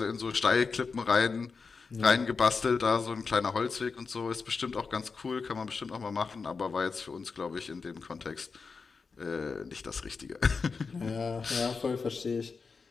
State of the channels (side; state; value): right; quieter; 4.9 dB